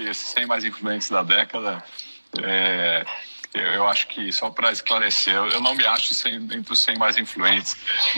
100 mais influentes da década. Eu acho que, só para esclarecer, eu não me acho entre os 100 mais influentes,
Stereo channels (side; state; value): both; inverted; correlation -1.00